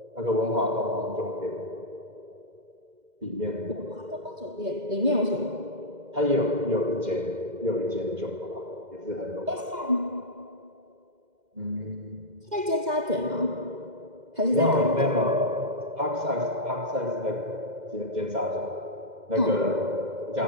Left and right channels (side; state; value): left; late; 2.0 ms